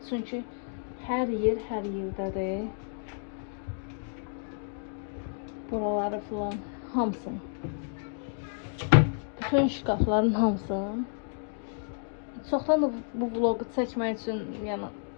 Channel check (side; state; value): right; silent; digital silence